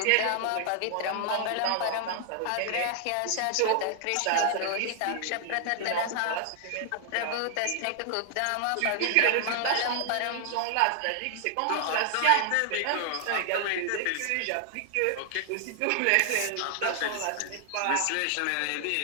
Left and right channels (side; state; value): both; different; correlation 0.00